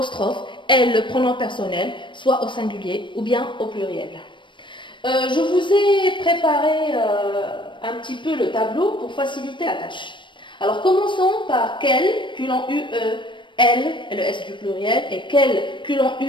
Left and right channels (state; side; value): late; right; 0.23 ms